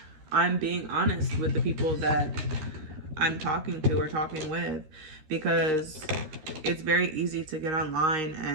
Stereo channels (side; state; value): left; late; 13 ms